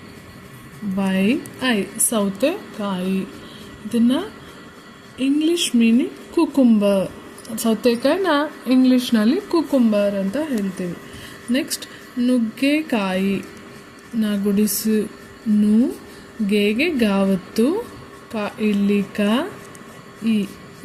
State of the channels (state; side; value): identical; both; correlation 1.00